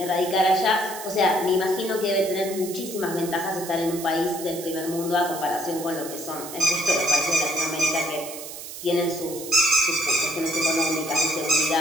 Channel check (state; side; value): noise; right; hiss, 11 dB below the sound